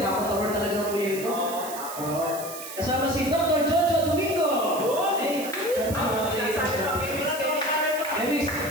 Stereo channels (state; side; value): noise; right; hiss, 11 dB below the sound